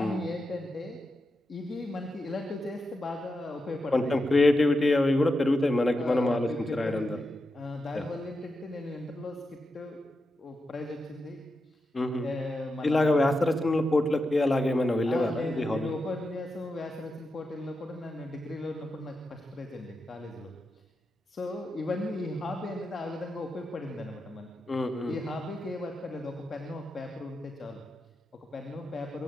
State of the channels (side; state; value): both; normal; correlation 0.88